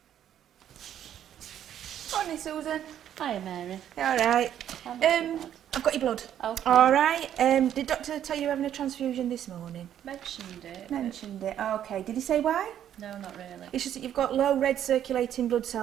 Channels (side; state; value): left; quieter; 10.4 dB